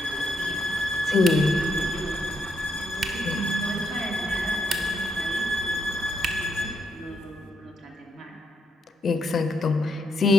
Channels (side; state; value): both; normal; correlation 0.77